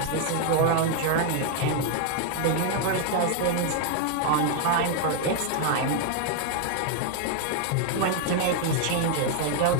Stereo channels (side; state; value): both; different; correlation 0.00